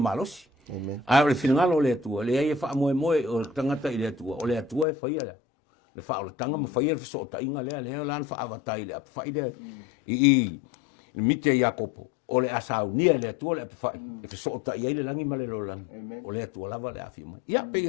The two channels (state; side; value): drops out; right; at 4.9 s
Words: a ole finanga le tu le ia fa mo o tangata ile tu ole atua e fai le fa o tanga mo fai el so ta inga le lan fa avatai le fai de i mite Jakopo ole asaunia le tua le fa e so ta ia le langi male lo lang ole tua lava le afi mai ia